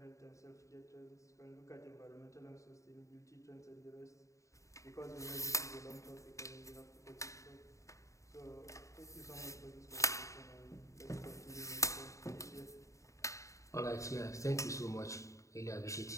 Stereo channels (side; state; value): right; late; 0.15 ms